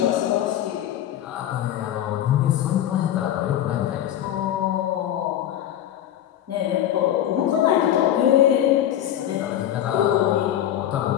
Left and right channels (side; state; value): right; quieter; 11.5 dB